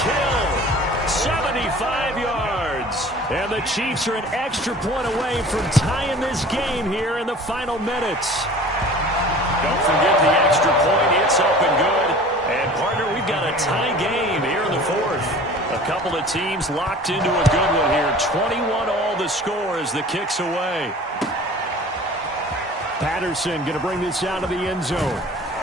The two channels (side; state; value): both; normal; correlation 0.44